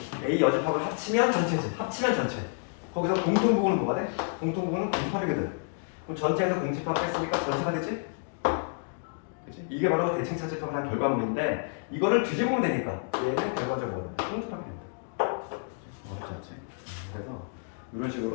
A 여집합을 합치면 전체지. 합치면 전체. 거기서 공통 부분은 뭐가 돼? 공통 부분은 공집합이거든. 그럼 전체에서 공집합 뺐으니까 전체가 되지? 그치? 이게 바로 대칭 차집합을 한 결과물인데 이거를 뒤집으면 되니까 얘는 결과적으로 공집합이 된다. 어렵지 않지? 그래서 이런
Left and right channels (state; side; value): silent; right; 58 dB below the other